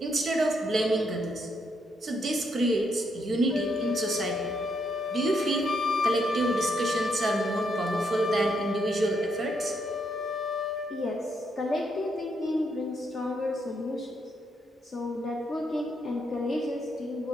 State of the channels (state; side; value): normal; both; correlation 0.76